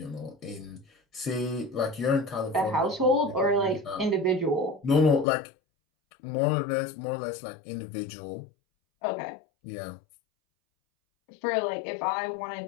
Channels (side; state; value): right; drops out; at 5.2 s